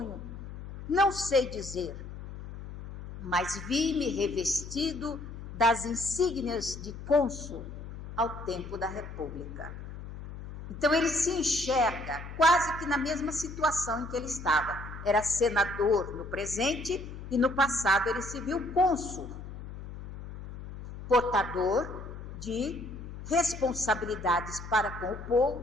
Não sei dizer, mas vi-me revestido das insígnias de cônsul ao tempo da República. Então ele se enxerga quase que na mesma situação em que ele estava. Era senador no presente e no passado ele se viu cônsul, portador de responsabilidades para com o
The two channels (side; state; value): left; noise; hum, 11 dB below the sound